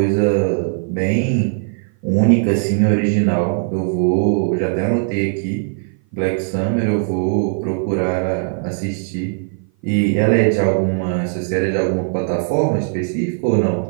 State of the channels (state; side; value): silent; left; 56 dB below the other